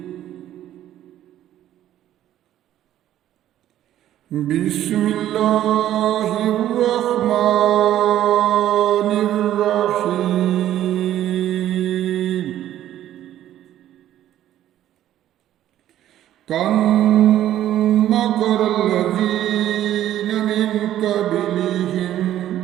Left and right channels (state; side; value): quieter; left; 12.3 dB